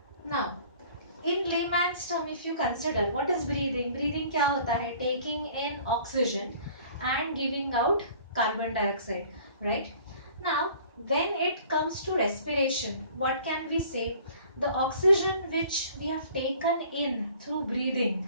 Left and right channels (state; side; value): inverted; both; correlation -0.51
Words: Now, in layman's term, if you consider what is breathing, breathing क्या होता है? Taking in oxygen and giving out carbon dioxide, right? Now, when it comes to respiration, what can we say? The oxygen which we have taken in through